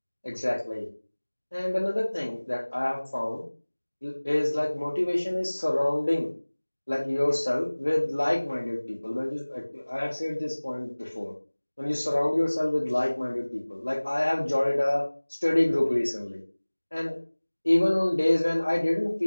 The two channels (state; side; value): inverted; both; correlation -1.00